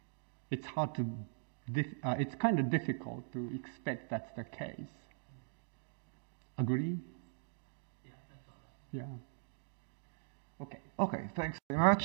It's hard to, it's kind of difficult to expect that's the case. Agree? Yeah, that's all. Yeah. Okay. Okay, thanks very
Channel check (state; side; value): silent; left; digital silence